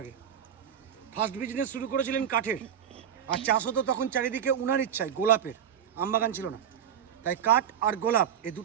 আগে। ফার্স্ট বিজনেস শুরু করেছিলেন কাঠের, আর চাষ হতো তখন চারিদিকে উনার ইচ্ছায় গোলাপের, আমবাগান ছিল না। তাই কাঠ আর গোলাপ এই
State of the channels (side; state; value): left; quieter; 9.1 dB